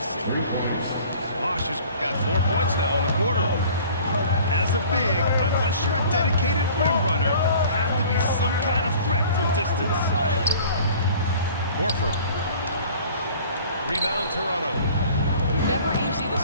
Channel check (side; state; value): both; inverted; correlation -0.48